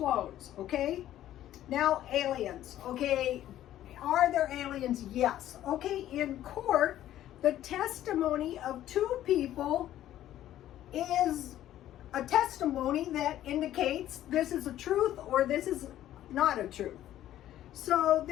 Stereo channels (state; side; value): quieter; right; 12.7 dB